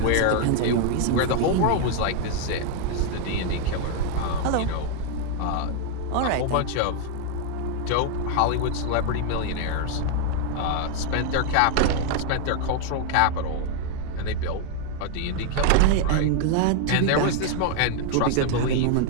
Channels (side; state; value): both; different; correlation 0.00